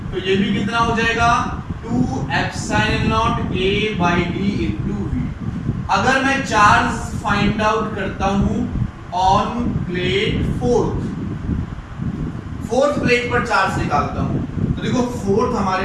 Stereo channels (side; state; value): both; identical; correlation 1.00